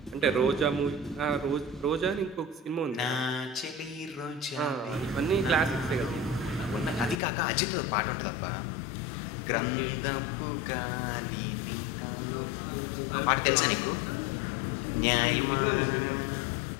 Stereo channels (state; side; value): drops out; right; at 7.2 s